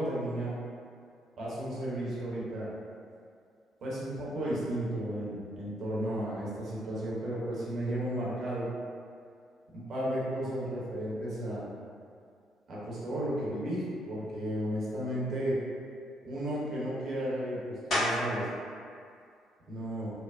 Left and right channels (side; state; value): both; normal; correlation 0.72